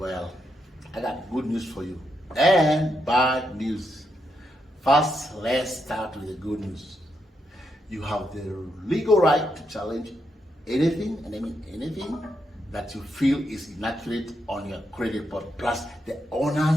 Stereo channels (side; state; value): both; normal; correlation 0.81